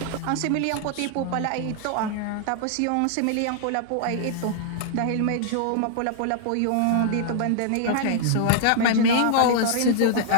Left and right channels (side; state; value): both; different; correlation -0.01